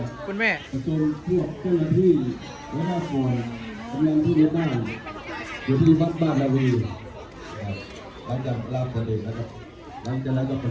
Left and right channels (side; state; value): both; identical; correlation 1.00